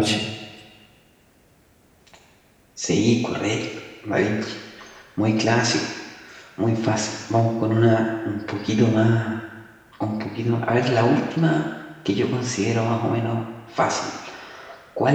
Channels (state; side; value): identical; both; correlation 1.00